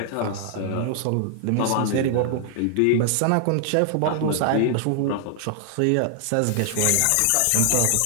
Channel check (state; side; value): different; both; correlation 0.00